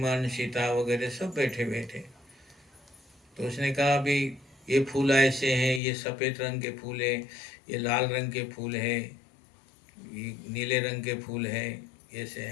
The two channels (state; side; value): drops out; right; at 5.8 s